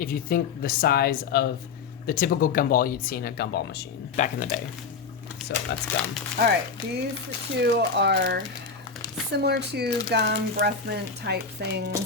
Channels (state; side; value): quieter; right; 5.3 dB